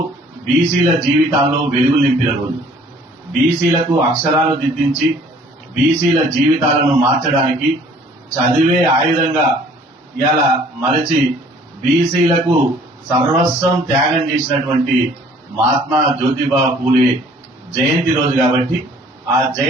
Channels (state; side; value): normal; both; correlation 0.55